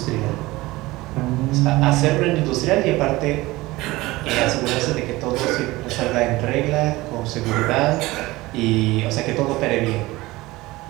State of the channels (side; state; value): left; quieter; 19.7 dB